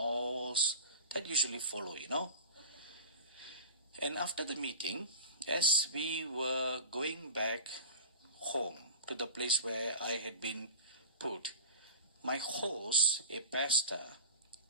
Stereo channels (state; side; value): inverted; both; correlation -0.36